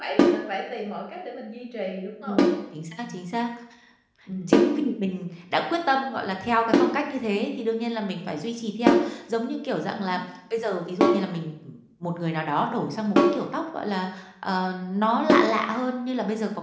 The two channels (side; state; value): both; identical; correlation 1.00